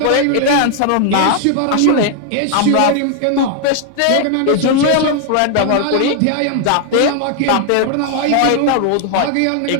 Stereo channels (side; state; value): both; different; correlation 0.00